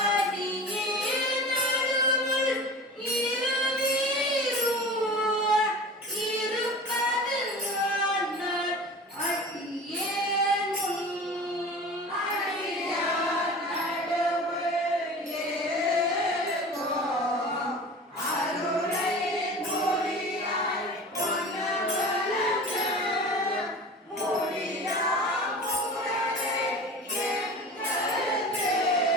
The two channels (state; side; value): normal; both; correlation 0.36